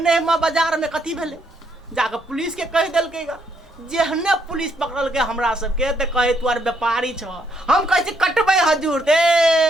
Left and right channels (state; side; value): normal; both; correlation 0.73